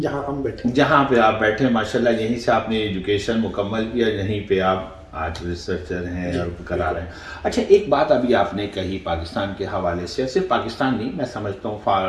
जहाँ हम बैठे, जहाँ पे आप बैठे माशाल्लाह, यहीं से आपने एजुकेशन मुकम्मल किया, यहीं पे आप आज रिसर्चर हैं और करा रहे हैं। अच्छा, एक बात अभी आपने कही पाकिस्तान के हवाले से, सिर्फ पाकिस्तान नहीं, मैं समझता हूँ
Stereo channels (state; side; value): identical; both; correlation 1.00